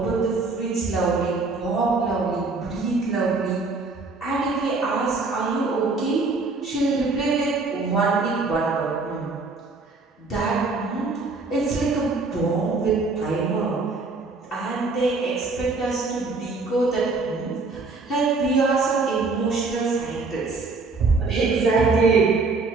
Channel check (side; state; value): left; quieter; 3.8 dB